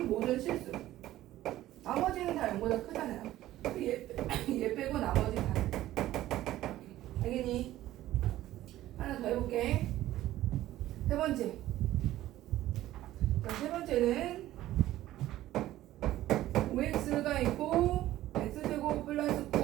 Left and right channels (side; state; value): left; quieter; 14.6 dB